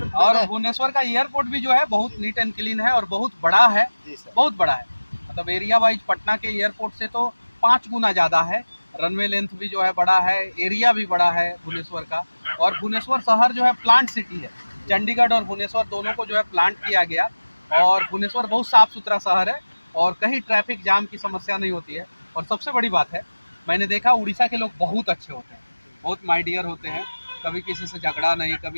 और मैं भुवनेश्वर का एयरपोर्ट भी जो है बहुत जी, नीट एंड क्लीन है और बहुत बड़ा है। जी सर। बहुत बड़ा है, मतलब एरिया वाइज पटना के एयरपोर्ट से तो 5 गुना ज़्यादा है। रनवे लेंथ भी जो है बड़ा है, एरिया भी बड़ा है भुवनेश्वर का। और भुवनेश्वर शहर जो है प्लांट सिटी है। चंडीगढ़ और भुवनेश्वर दोनों को जो है प्लांट किया गया। और भुवनेश्वर बहुत साफ़ सुथरा शहर है और कहीं ट्रैफिक जाम की समस्या नहीं होती है। और सबसे बड़ी बात है, मैंने देखा उड़ीसा के लोग बहुत अच्छे होते हैं, बहुत माई डियर होते हैं। कभी किसी से झगड़ा नहीं,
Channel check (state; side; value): inverted; both; correlation -1.00